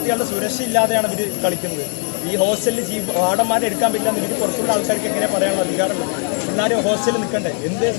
സുരക്ഷ ഇല്ലാതെയാണ് ഇവർ കളിക്കുന്നത്. ഈ ഹോസ്റ്റലിൽ വാർഡന്മാരെ എടുക്കാൻ പറ്റില്ല എന്ന് ഇവർ പുറത്തുള്ള ആൾക്കാർക്ക് എങ്ങനെ പറയാനുള്ള അധികാരമുള്ളത്? എല്ലാവരും ഹോസ്റ്റലിൽ നിൽക്കണ്ടേ? എന്ത്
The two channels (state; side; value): quieter; right; 39.9 dB